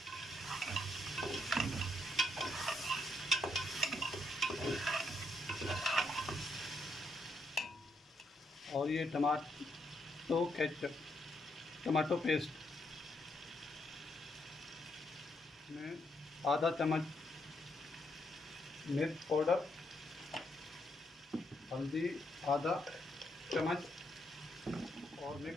और ये टमाटो पेस्ट में आधा चम्मच मिर्च पाउडर, हल्दी आधा चम्मच और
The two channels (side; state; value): both; normal; correlation 0.76